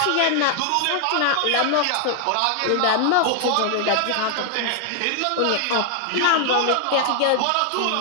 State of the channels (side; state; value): both; different; correlation 0.00